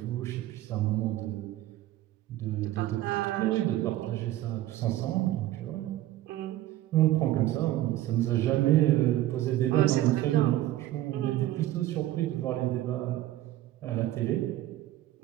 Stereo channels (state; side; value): quieter; left; 14.7 dB